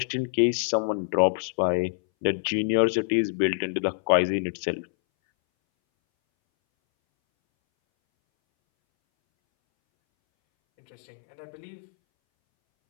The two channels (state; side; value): silent; right; 61 dB below the other